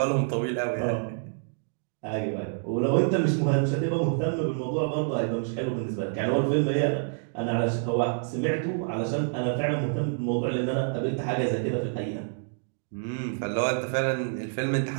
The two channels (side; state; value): left; silent; digital silence